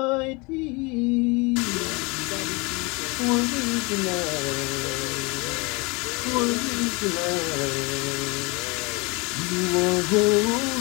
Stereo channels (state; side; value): quieter; right; 27.7 dB